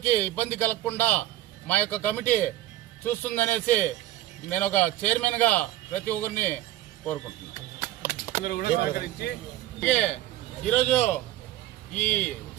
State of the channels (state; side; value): quieter; left; 14.6 dB